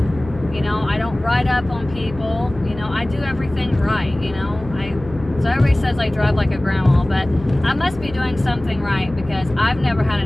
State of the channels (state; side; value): noise; left; hum, 15 dB below the sound